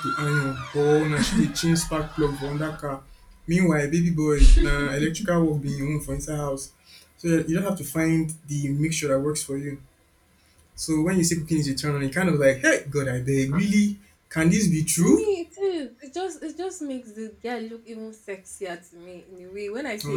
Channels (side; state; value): both; identical; correlation 1.00